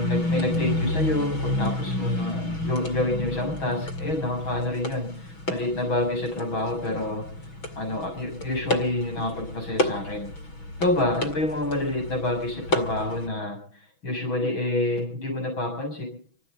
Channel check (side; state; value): right; late; 6.2 ms